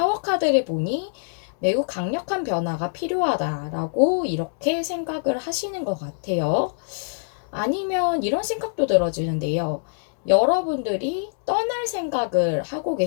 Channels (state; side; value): silent; right; digital silence